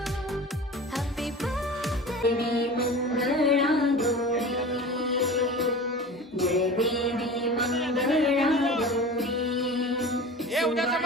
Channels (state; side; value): normal; both; correlation 0.35